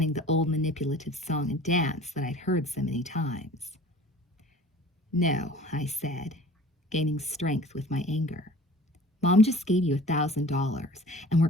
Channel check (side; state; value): both; normal; correlation 0.45